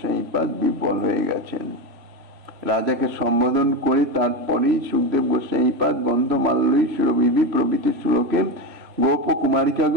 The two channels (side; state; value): left; late; 3.1 ms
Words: বিহ্বল হয়ে গেছেন। রাজাকে সম্বোধন করে তারপরেই সুখদেব গোস্বামীপাদ গন্ধমাল্যই সুরভিভি প্রভৃতি শ্লোকে গোপ